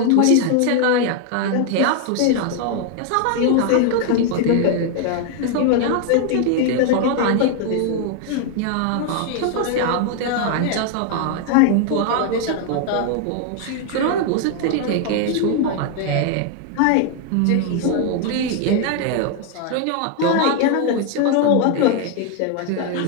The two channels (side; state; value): both; different; correlation 0.00